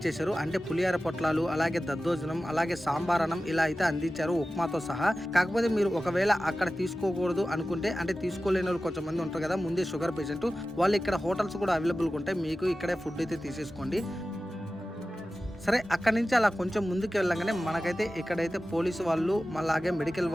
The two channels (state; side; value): normal; both; correlation 0.95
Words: చేశారు. అంటే పులిహార పొట్లాలు, అలాగే దద్దోజనం, అలాగే సాంబారనం ఇలా అయితే అందించారు ఉప్మాతో సహా. కాకపోతే మీరు ఒకవేళ అక్కడ తీసుకోకూడదు అనుకుంటే, అంటే తీసుకోలేని వాళ్ళు కొంచెం మంది ఉంటారు కదా, ముందే షుగర్ పేషెంట్, వాళ్ళు ఇక్కడ హోటల్స్ కూడా అవైలబుల్గా ఉంటాయి. మీకు ఇక్కడే ఫుడ్ అయితే తీసేసుకోండి. సరే, అక్కడి నుంచి అలా కొంచెం ముందుకు వెళ్ళగానే మనకైతే ఇక్కడైతే పోలీసు వాళ్ళు, అలాగే మెడికల్